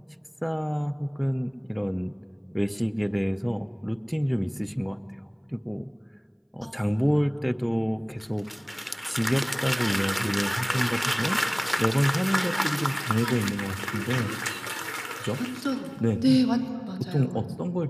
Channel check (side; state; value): both; identical; correlation 1.00